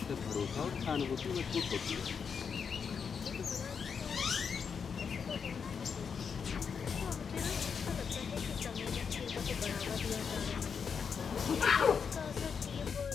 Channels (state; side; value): quieter; right; 6.3 dB